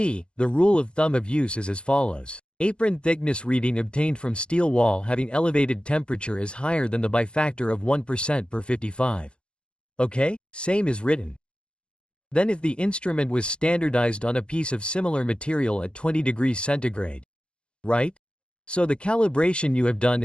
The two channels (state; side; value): late; right; 0.054 ms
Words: the rule of thumb of use is as follows. Apron thickness reading obtained from steel wall having elevated temperature is higher than the by factor of 1% per 55. Okay? Same is written. Then if the instrument was standardized on a piece of similar material at 20 degrees centigrade. Right? So the calibration you have done